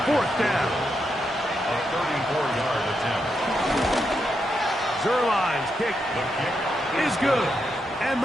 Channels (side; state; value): both; normal; correlation 0.83